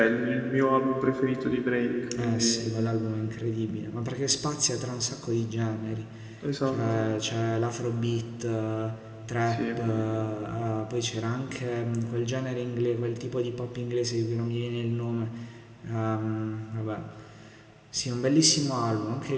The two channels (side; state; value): both; identical; correlation 1.00